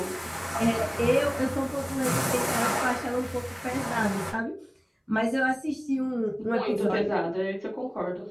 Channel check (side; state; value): both; identical; correlation 1.00